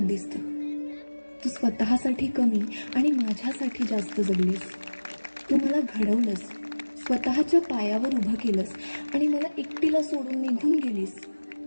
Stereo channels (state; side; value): inverted; both; correlation -1.00